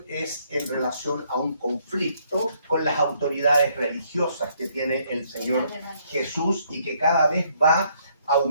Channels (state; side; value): inverted; both; correlation -0.69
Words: es en relación a un conflicto con las autoridades religiosas que tiene el Señor Jesús y que cada vez va